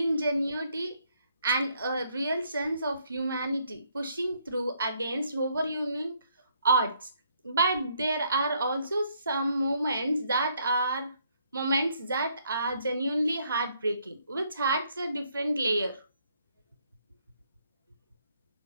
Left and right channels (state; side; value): inverted; both; correlation -0.70